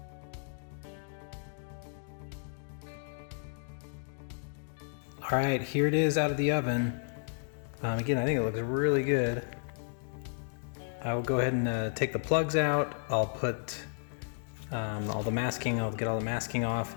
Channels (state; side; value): silent; right; digital silence